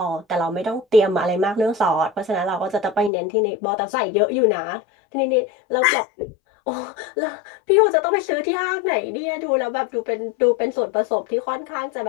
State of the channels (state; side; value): drops out; right; at 3.1 s